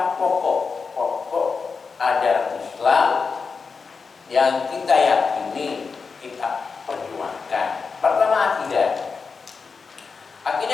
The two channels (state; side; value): quieter; right; 5.0 dB